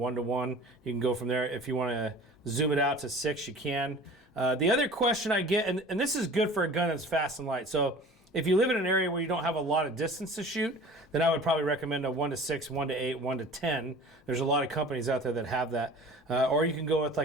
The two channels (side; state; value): both; normal; correlation 0.43